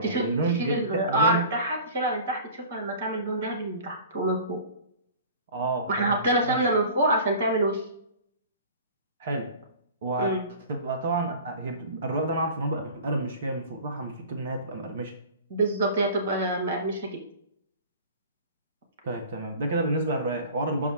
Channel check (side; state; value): both; inverted; correlation -0.41